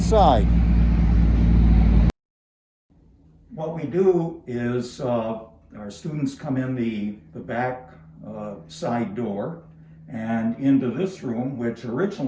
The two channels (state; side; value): identical; both; correlation 1.00